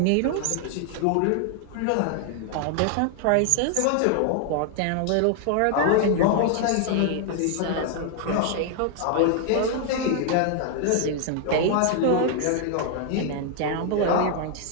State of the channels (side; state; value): both; different; correlation 0.00